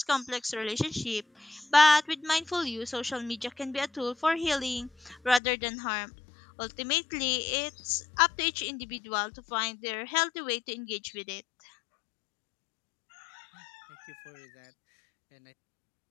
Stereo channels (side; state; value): right; drops out; at 5.4 s